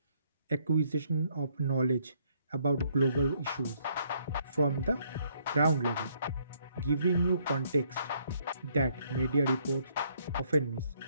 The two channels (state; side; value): inverted; both; correlation -0.69